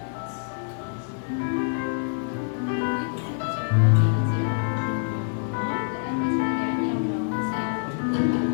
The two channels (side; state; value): right; silent; 61 dB below the other